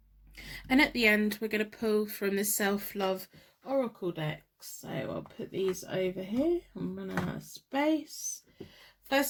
And at the end, we're going to pull from the Self-Love Oracle deck. So I'll put these over here. I'm running out of space.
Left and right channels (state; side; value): identical; both; correlation 1.00